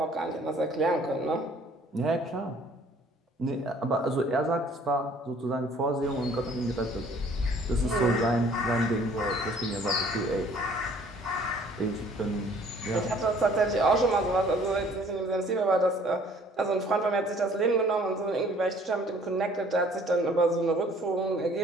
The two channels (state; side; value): normal; both; correlation 0.56